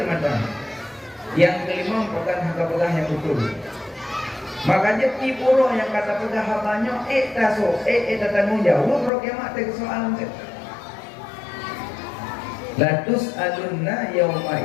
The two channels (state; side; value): drops out; right; at 9.1 s